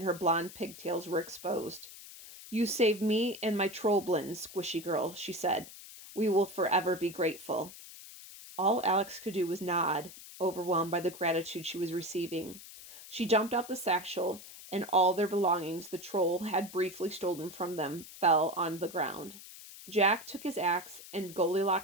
her blonde pigtails were exposed. You saved me and my trollblins, squishy girl, she said. We will forever be grateful. All Alex could do was nod, overwhelmed by the gratitude she was receiving. She jumped out the satchel, and all their belongings the troll had briefly stolen from them fell on the ground. Jack took his axe, and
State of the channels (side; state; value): left; noise; hiss, 16 dB below the sound